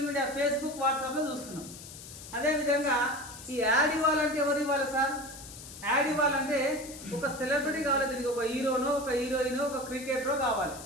మీడియా ఫేస్బుక్ వాట్సాప్లో చూస్తున్నాం. అదేవిధంగా ఈ యాడ్ ఇవ్వాలంటే ఎవరు ఇవ్వాలి సార్? యాడ్ ఇవ్వాలంటే ఒక సెలబ్రిటీ కావాలి. దీనికి ఒక హీరోనో, ఒక హీరోయిన్, ఒక క్రికెటరో కావాలి.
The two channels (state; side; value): noise; left; hiss, 14 dB below the sound